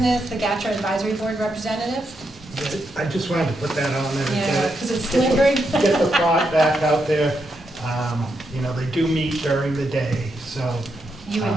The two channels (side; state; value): both; normal; correlation 0.82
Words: the GATRA Advisory Board Representative. I just wanted to put that on there. Yeah, because it's lingering. Get the thought back out there. You know, they do meet during the day, so. You